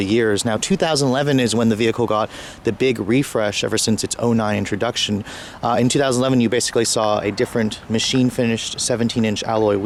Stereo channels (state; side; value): identical; both; correlation 1.00